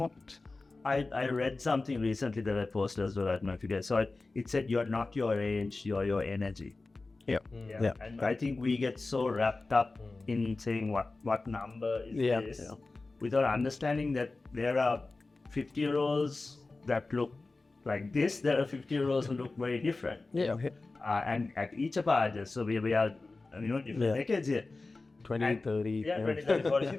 I read something recently that I posted as well. I don't know if you guys saw it. It said you're not your age, you're your energy. Yeah. And I think we get so wrapped up in saying what number is this without understanding that there are 50-year-olds that look like this. There are 50-year-olds who look very different. And at each of our ages, so we are different decades here. 20, 30. 20, 30, 40,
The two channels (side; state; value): right; quieter; 3.5 dB